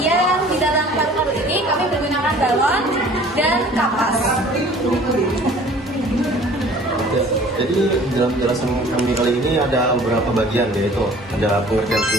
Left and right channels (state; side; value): normal; both; correlation 0.50